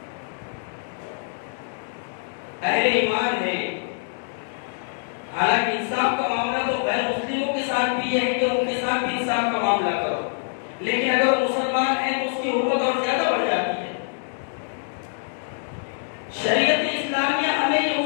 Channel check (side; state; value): right; silent; digital silence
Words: اہل ایمان ہے، حالانکہ انصاف کا معاملہ تو غیر مسلموں کے ساتھ بھی ہے کہ ان کے ساتھ بھی انصاف کا معاملہ کرو، لیکن اگر وہ مسلمان ہے تو اس کی حرمت اور زیادہ بڑھ جاتی ہے۔ شریعت اسلامیہ ہمیں یہ